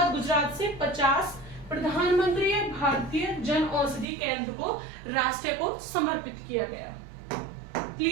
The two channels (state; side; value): drops out; left; at 4.0 s